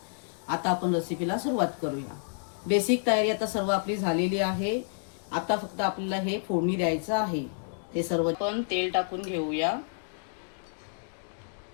आता आपण रेसिपीला सुरुवात करूया। बेसिक तयारी आता सर्व आपली झालेली आहे। आता फक्त आपल्याला हे फोडणी द्यायचं आहे। हे सर्व आपण तेल टाकून घेऊया।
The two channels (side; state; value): right; silent; digital silence